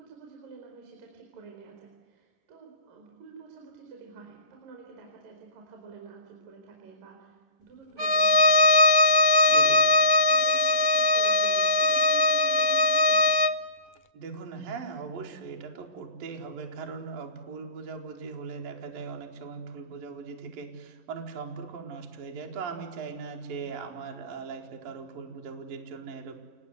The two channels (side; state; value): left; late; 10 ms